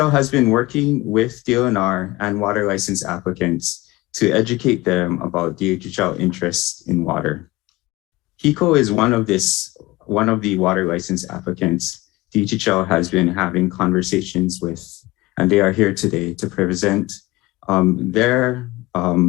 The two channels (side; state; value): right; quieter; 20.3 dB